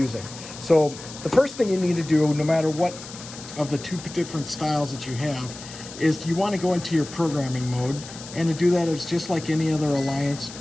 So the first thing you need to do, no matter what of the two different styles that you have, is you want to go into your programming mode, and to do that, it's just like any other Alliance.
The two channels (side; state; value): left; noise; hiss, 14 dB below the sound